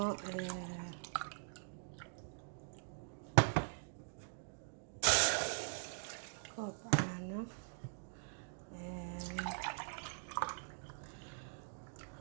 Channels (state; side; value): silent; left; digital silence